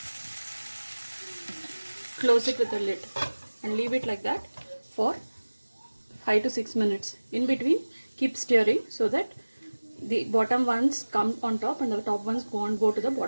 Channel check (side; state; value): both; inverted; correlation -1.00